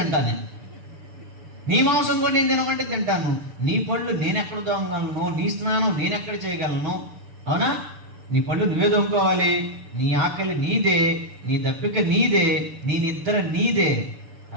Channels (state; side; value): late; left; 6.7 ms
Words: నీ మాంసం కూడా నేను తినమంటే తింటాను. నీ పళ్ళు నేను ఎక్కడ దోమగలను? నీ స్నానం నేను ఎక్కడ చేయగలను? అవునా? నీ పళ్ళు నువ్వే దోముకోవాలి. నీ ఆకలి నీదే, నీ దప్పిక నీదే, నీ నిద్ర నీదే.